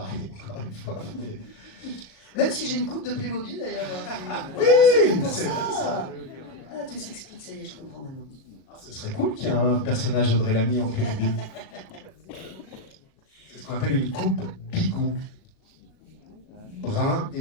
encore une fois. Même si j'ai une coupe de Playmobil d'ailleurs. Oui, c'est pour c'est ça. Ah, tout s'explique, ça y est, je comprends maintenant. Ce serait cool qu'il y ait un personnage Audrey Lamy en Playmobil. C'est ce qu'on appelle une coupe bigou. Brun et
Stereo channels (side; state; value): right; late; 37 ms